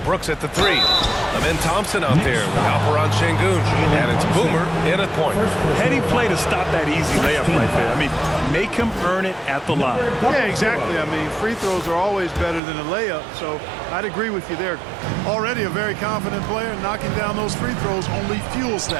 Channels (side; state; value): left; drops out; at 12.6 s